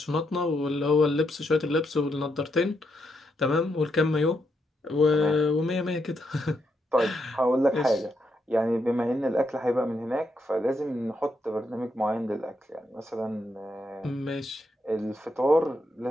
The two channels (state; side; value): normal; both; correlation 0.80